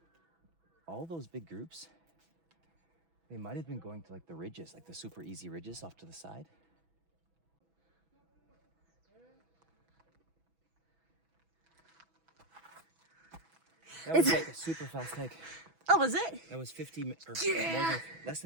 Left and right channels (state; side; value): late; left; 6.1 ms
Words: All those big groups, they might have been going to like the ridges, like the super easy ridges off to the side. That was like a super fast hike. Oh, was it? That was 50 or more than, less